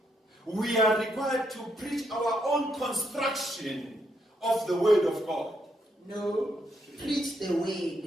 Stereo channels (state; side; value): normal; both; correlation 0.77